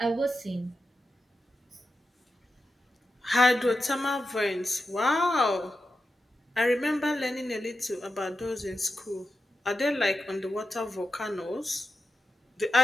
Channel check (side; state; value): both; normal; correlation 0.90